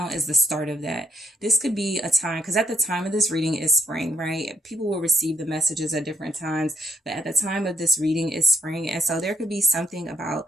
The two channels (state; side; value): normal; both; correlation 0.74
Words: is the start of that. This could be a time, because at the time of this reading is spring, right? People will receive the messages at different times, but at the time of this reading is spring. And so there could be something